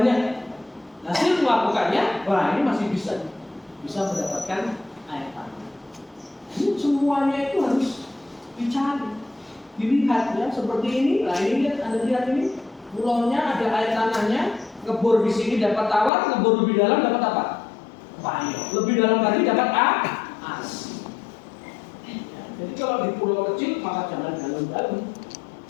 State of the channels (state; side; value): drops out; right; at 16.1 s